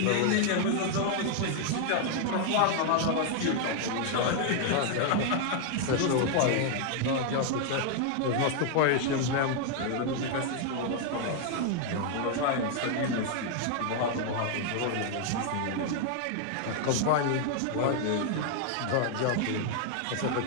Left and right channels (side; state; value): both; different; correlation 0.00